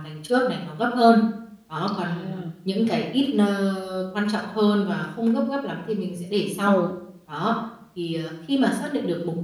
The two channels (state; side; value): identical; both; correlation 1.00